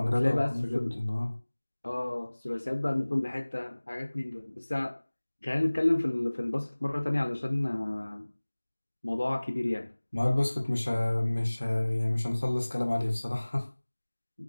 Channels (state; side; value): inverted; both; correlation -1.00